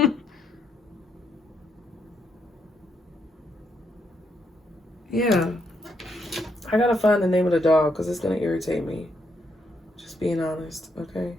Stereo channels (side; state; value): both; normal; correlation 0.77